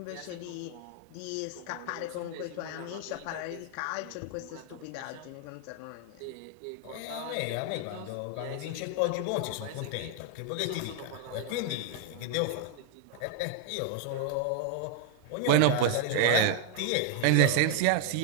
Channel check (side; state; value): both; different; correlation 0.00